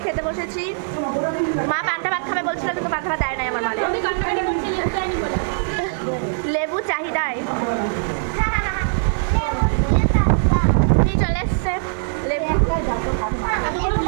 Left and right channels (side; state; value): left; silent; digital silence